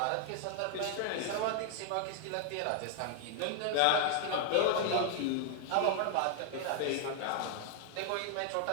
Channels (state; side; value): different; both; correlation 0.00